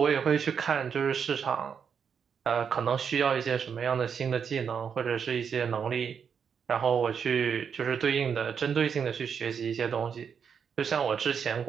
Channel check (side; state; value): left; quieter; 7.0 dB